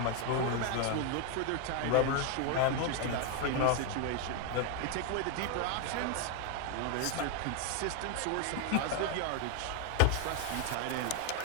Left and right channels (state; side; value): different; both; correlation 0.01